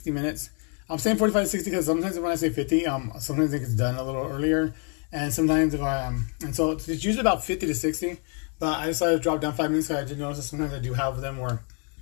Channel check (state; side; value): quieter; right; 37.7 dB